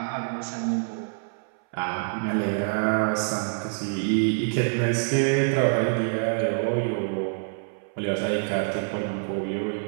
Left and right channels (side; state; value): left; silent; 60 dB below the other